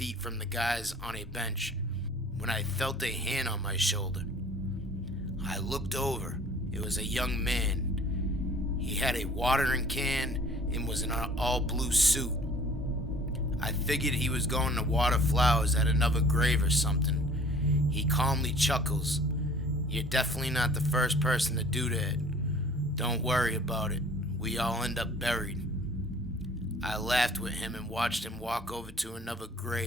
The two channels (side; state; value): both; normal; correlation 0.51